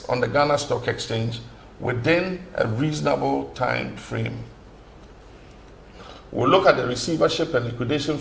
on the Ghana Stock Exchange within a reasonable time frame. We'll look at the receivership and liquidation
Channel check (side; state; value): both; identical; correlation 1.00